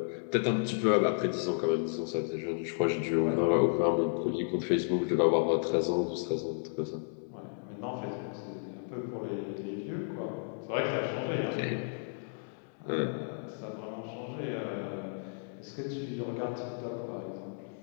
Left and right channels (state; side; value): silent; right; digital silence